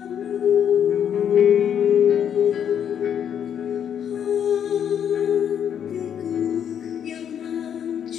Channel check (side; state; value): right; quieter; 8.8 dB